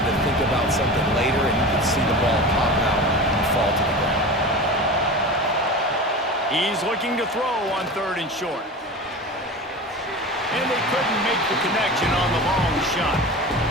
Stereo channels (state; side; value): normal; both; correlation 0.31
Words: to think about something later, and you could see the ball pop out and fall to the ground. He's looking to throw on 3rd and short. And they couldn't make the connection on the long shot.